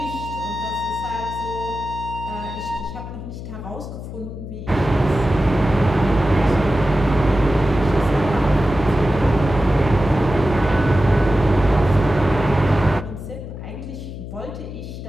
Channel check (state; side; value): noise; left; hum, 10 dB below the sound